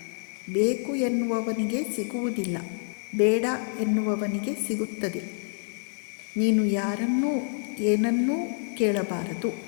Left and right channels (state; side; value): silent; right; 57 dB below the other